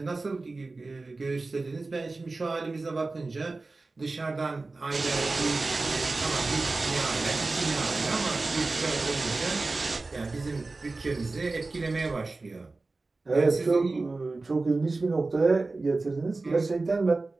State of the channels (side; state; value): left; quieter; 3.5 dB